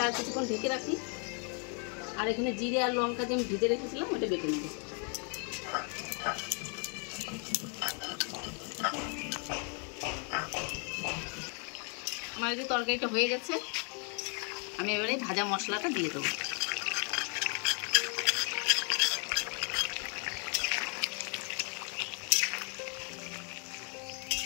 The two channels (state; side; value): quieter; right; 39.4 dB